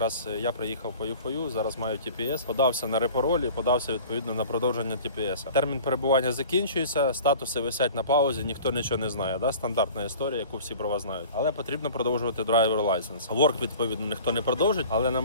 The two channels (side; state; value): both; inverted; correlation -0.43